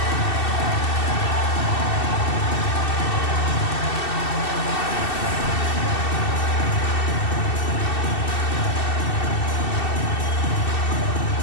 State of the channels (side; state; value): right; late; 2.7 ms